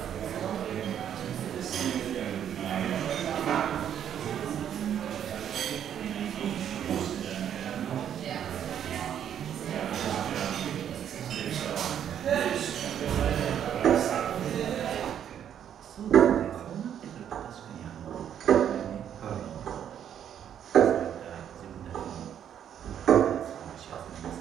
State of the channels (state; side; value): quieter; left; 9.5 dB